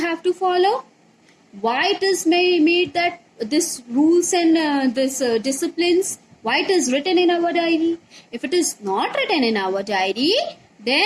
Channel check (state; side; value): identical; both; correlation 1.00